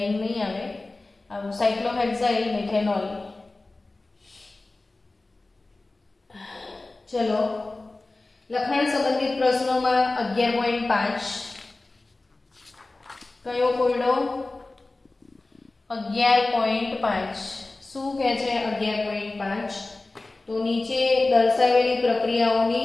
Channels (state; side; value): quieter; right; 3.1 dB